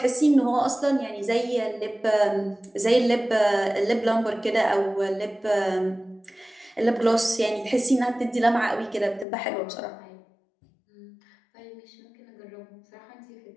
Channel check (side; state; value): right; drops out; at 9.2 s